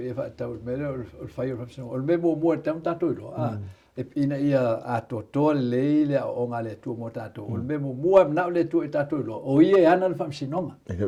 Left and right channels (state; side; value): identical; both; correlation 1.00